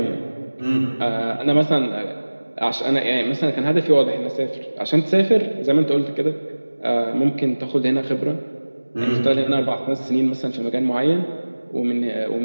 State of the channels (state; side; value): inverted; both; correlation -1.00